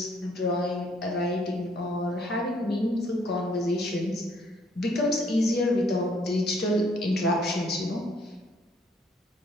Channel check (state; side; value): normal; both; correlation 0.64